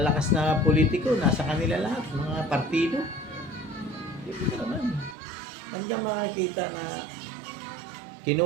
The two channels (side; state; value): left; drops out; at 5.2 s